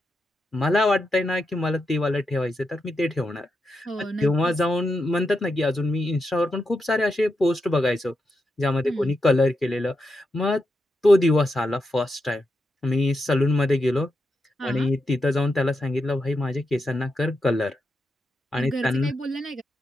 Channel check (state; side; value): normal; both; correlation 0.86